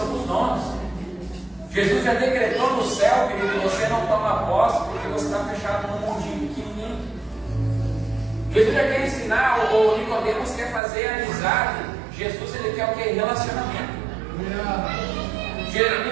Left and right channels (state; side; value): drops out; left; at 10.8 s